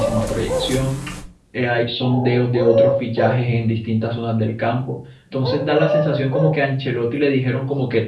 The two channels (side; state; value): both; identical; correlation 1.00